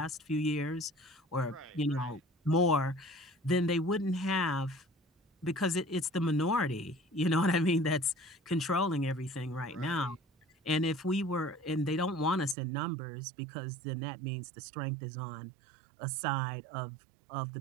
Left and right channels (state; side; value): drops out; left; at 12.6 s